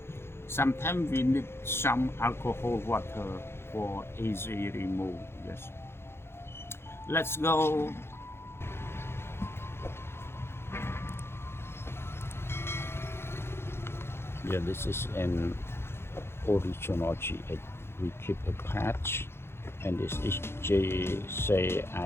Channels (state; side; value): late; right; 0.12 ms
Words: sometimes we need some alcohol water for easy remove. Yes, let's go. Yeah, this is an original GH. We keep a patch, and this is